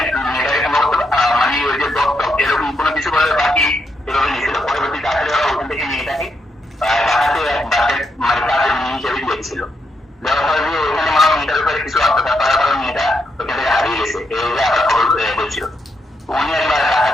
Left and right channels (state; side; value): normal; both; correlation 0.81